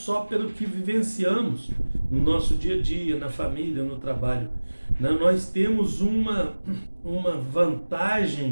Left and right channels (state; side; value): inverted; both; correlation -1.00